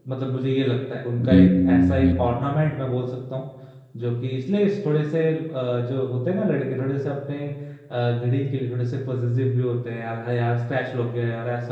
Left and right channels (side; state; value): both; identical; correlation 1.00